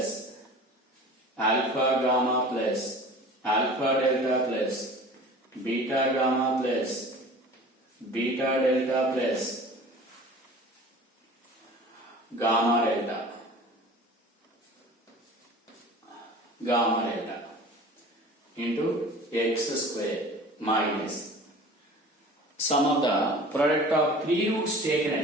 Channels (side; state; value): both; normal; correlation 0.41